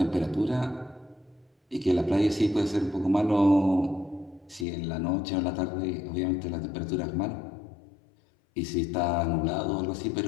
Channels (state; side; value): drops out; right; at 4.7 s